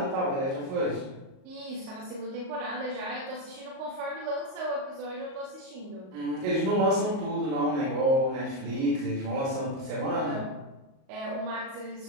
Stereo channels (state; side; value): late; left; 38 ms